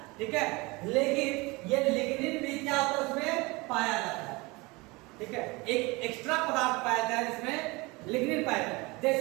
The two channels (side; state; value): left; quieter; 24.6 dB